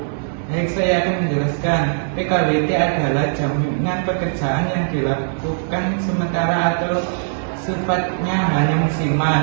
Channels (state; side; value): silent; left; digital silence